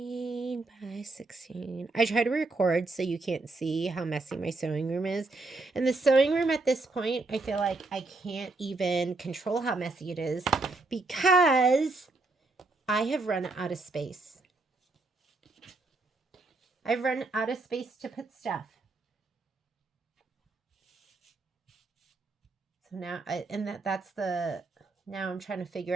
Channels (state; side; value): quieter; left; 3.4 dB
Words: by 16. I try to record so you can't see how messy my sewing room is. And the sewing room at this point, I feel like I can't even control how messy it is because I have run out of space. I've run out of space to put stuff. So now, now I'm trying to figure